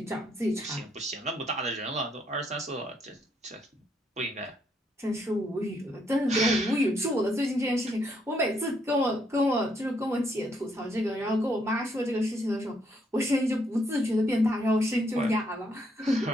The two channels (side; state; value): both; normal; correlation 0.73